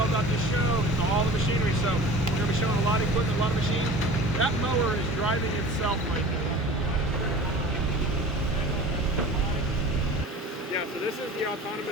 about this show. It's all the machinery. So we're going to be showing a lot of equipment, a lot of machines. That mower is driving itself right now. Yeah, so this is the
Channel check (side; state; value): both; normal; correlation 0.40